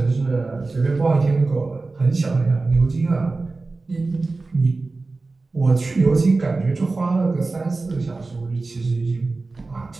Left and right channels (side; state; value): left; quieter; 3.6 dB